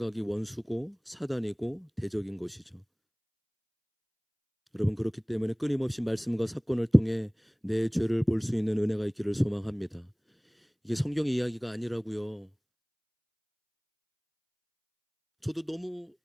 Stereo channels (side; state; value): both; identical; correlation 1.00